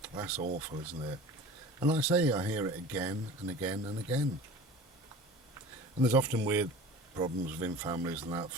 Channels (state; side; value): normal; both; correlation 0.39